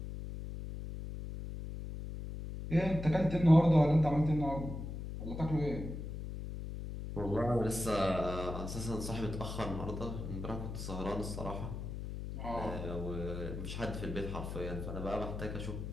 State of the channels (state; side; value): noise; left; hum, 7 dB below the sound